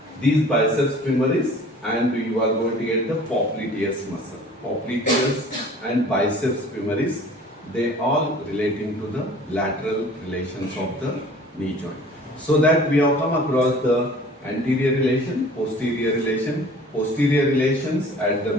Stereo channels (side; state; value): both; normal; correlation 0.47